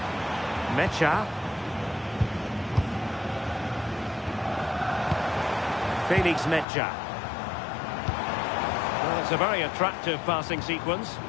Mecha. Felix Mecha. Well, it's a very attractive passing sequence.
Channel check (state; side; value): drops out; right; at 6.7 s